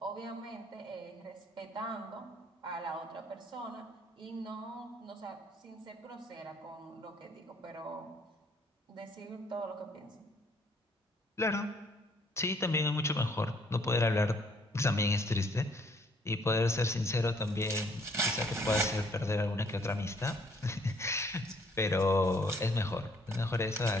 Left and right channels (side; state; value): both; normal; correlation 0.64